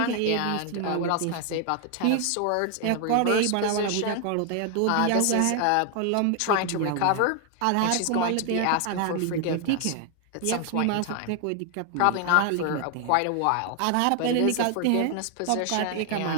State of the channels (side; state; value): both; different; correlation 0.00